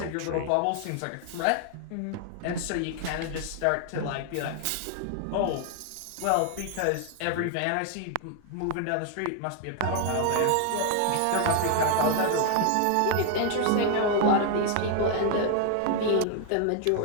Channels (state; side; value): different; both; correlation 0.00